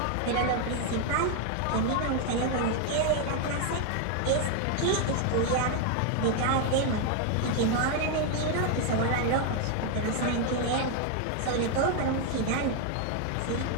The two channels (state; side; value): different; both; correlation 0.01